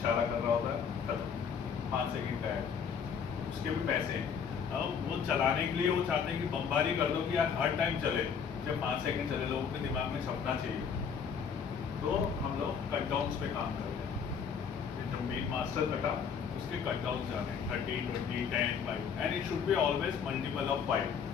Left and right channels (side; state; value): right; quieter; 6.8 dB